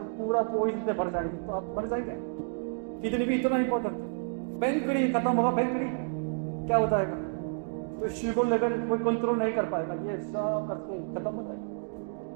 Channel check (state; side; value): silent; left; digital silence